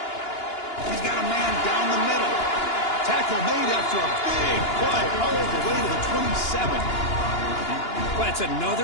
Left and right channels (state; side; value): late; right; 2.9 ms